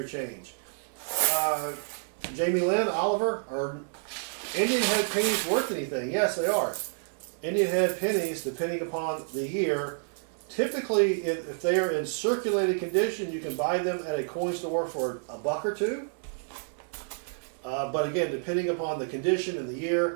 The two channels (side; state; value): left; silent; 59 dB below the other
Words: change. Jamie Lynn, Oliver, are Indian head pennies worth anything? Yes, they are. Indian head pennies, depending upon the year, typically if they are in circulated condition, you can buy them at a coin store for $1 or $2. But again, depending upon the condition and the